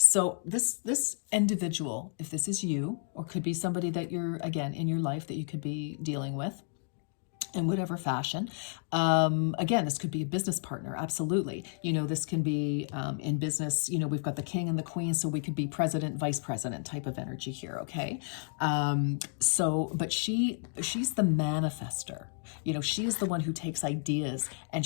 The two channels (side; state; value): right; silent; 57 dB below the other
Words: this individual, if this is you, or could be somebody that you're, again, in your life that you could be dealing with, in whatever fashion. Again, this could be a business partner, absolutely. You know, this can be in business, you know, we've got the King and the Queen, so we could be president, vice president type of energy here, okay? So, but she's the manifester. You know, she is the one who takes ideas